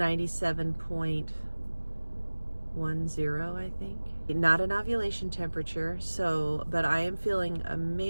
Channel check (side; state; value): both; inverted; correlation -1.00